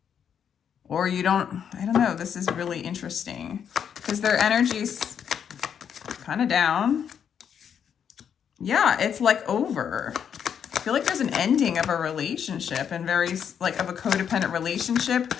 Or I don't know, this is really interesting because their energy's kind of down. Yeah, it's like over. I feel like there's an ending of a relationship and of a codependent relationship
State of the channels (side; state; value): right; quieter; 8.1 dB